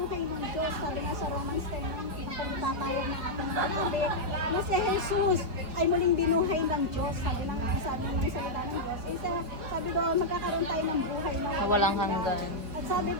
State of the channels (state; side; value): late; left; 4.9 ms